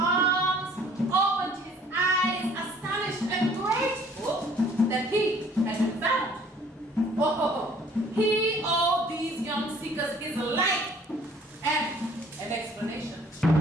opened his eyes, astonished and grateful that he had been found. Oh, he owed these young seekers his life and an explanation.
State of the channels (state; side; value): normal; both; correlation 0.56